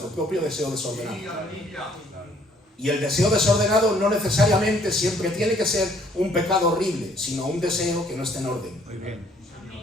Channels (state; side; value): normal; both; correlation 0.62